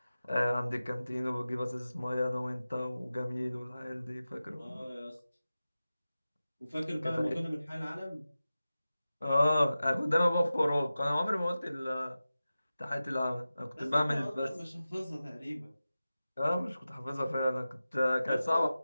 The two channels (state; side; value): inverted; both; correlation -0.95